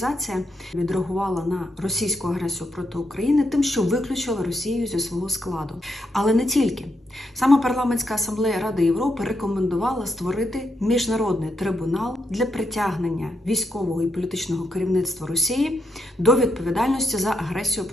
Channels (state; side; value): normal; both; correlation 0.80